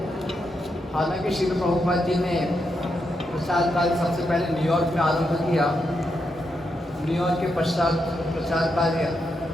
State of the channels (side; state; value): both; normal; correlation 0.83